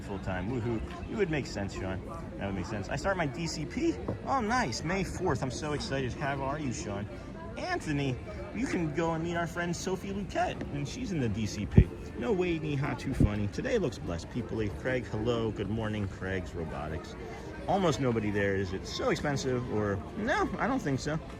full time. Woohoo. You would make sense, Sean. That would make sense. I start my DCP. Oh, nice. May 4th. I'm so excited. How are you, Sean? Anthony, you can go and meet our friend Sophie Luquette, and she's in the DCP. No way, Neha. Too funny. Today looks blessed. People-y. Craig, hello. Good morning. Craig's Robotics. Almost nobody there. Is it so expensive or no? I don't think so.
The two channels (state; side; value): identical; both; correlation 1.00